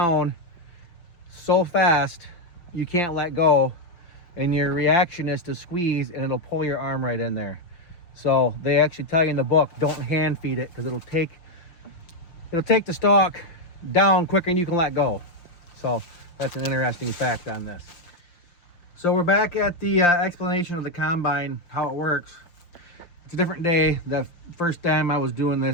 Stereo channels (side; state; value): right; late; 5.8 ms